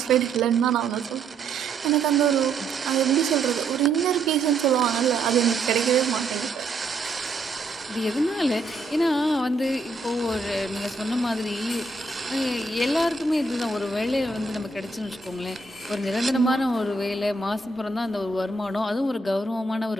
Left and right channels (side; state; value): left; quieter; 3.4 dB